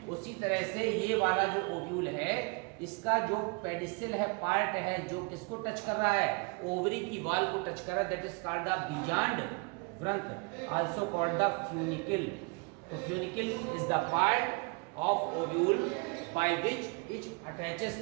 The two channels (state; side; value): quieter; left; 31.9 dB